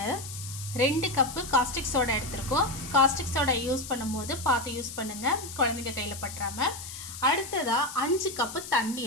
2 கப்பு காஸ்டிக் சோடா எடுத்திருக்கோம். காஸ்டிக் சோடா யூஸ் பண்ணும்போது பார்த்து யூஸ் பண்ணுங்கள், குழந்தைங்க கையில் பற்றாமல். அடுத்ததாக 5 கப்பு தண்ணி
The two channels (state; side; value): noise; left; hiss, 11 dB below the sound